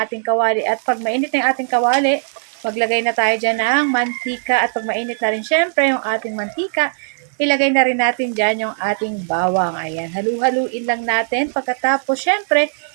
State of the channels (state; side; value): silent; left; digital silence